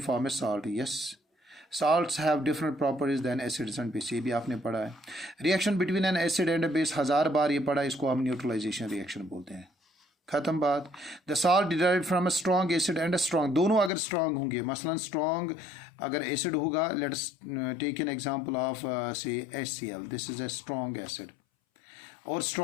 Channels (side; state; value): right; drops out; at 13.9 s